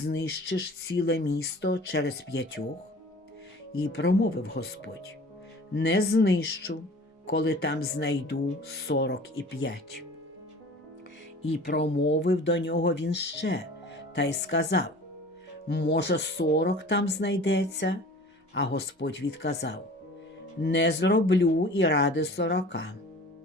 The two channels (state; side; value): normal; both; correlation 0.43